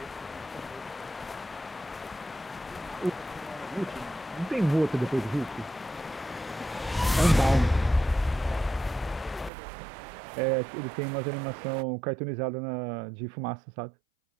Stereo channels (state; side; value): drops out; left; at 9.5 s